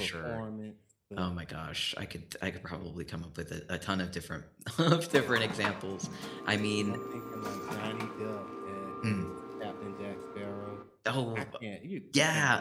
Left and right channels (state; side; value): identical; both; correlation 1.00